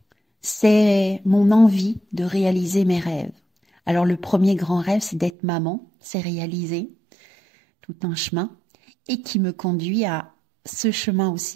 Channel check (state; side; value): drops out; left; at 5.3 s